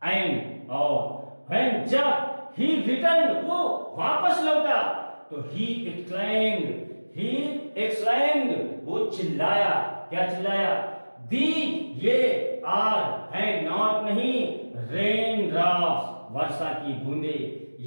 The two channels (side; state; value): both; inverted; correlation -1.00